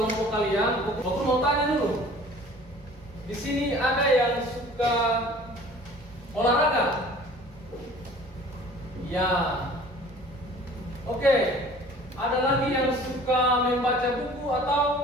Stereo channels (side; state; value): both; normal; correlation 0.48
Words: kalian, Bapak Guru mau tanya dulu. Di sini ada yang suka olahraga? Ya. Oke. Ada lagi yang suka membaca buku atau